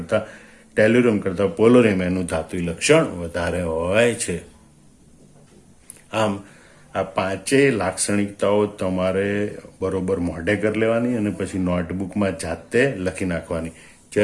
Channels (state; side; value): identical; both; correlation 1.00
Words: ટેલ્યુરમ કરતા પોલોનિયમ એનું ધાત્વી લક્ષણ વધારે હોય છે. આમ આ પાંચેય લાક્ષણિકતાઓ તમારે બરોબર મોઢે કરી લેવાની અને પછી નોટબુકમાં જાતે લખી નાખવાની.